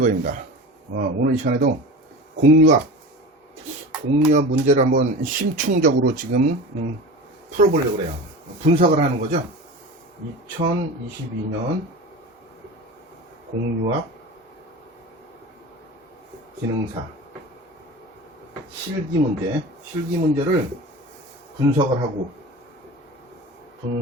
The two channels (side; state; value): both; normal; correlation 0.32